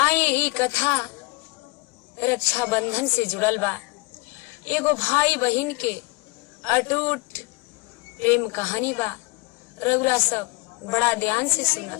ई कथा रक्षा बंधन से जुड़ल बा। एगो भाई बहन के अटूट प्रेम कहानी बा। रउरा सब बड़ा ध्यान से सुनब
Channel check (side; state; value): right; quieter; 24.7 dB